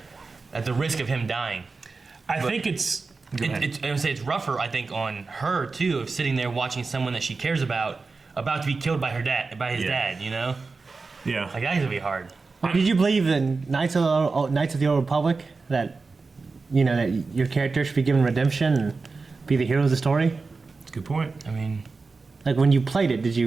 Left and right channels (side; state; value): left; quieter; 4.1 dB